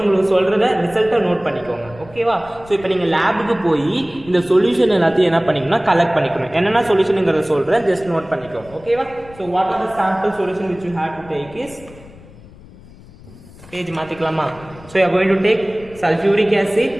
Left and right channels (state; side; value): noise; left; rumble, 21 dB below the sound